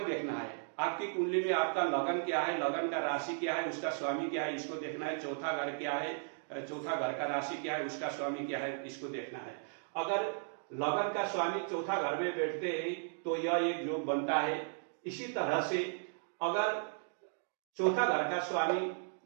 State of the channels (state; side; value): silent; left; digital silence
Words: देखना है, आपकी कुंडली में आपका लगन क्या है, लगन का राशि क्या है, उसका स्वामी क्या है, इसको देखना है। चौथा घर क्या है, चौथा घर का राशि क्या है, उसका स्वामी क्या है, इसको देखना है। अगर लगन का स्वामी चौथा घर में बैठते हैं तो यह एक योग बनता है। इसी तरह से अगर चौथा घर का स्वामी